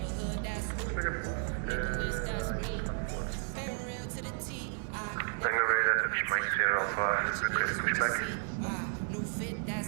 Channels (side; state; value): left; silent; 56 dB below the other